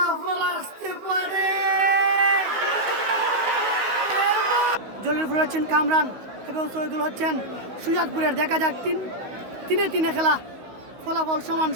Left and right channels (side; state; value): left; late; 16 ms